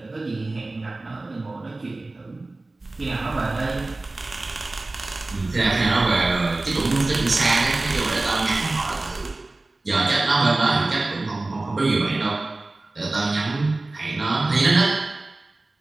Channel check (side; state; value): left; quieter; 3.1 dB